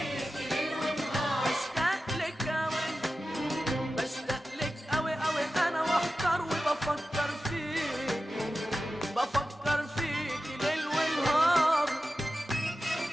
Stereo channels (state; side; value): normal; both; correlation 0.93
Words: ليل ونهار. بشتاق لك أوي بشتاق لك أوي أوي أنا واحتار وبفكر فيكي بفكر فيكي ليل ونهار.